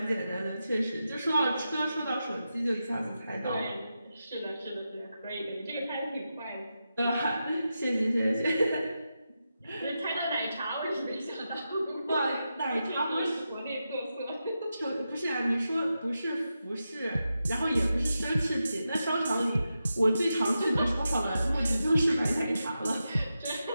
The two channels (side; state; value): both; inverted; correlation -0.89